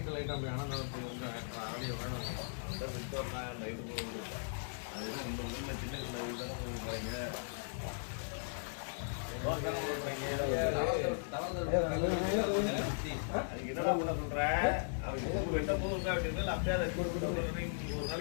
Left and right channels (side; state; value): right; silent; digital silence